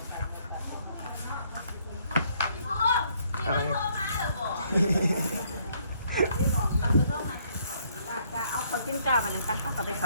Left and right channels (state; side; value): inverted; both; correlation -0.67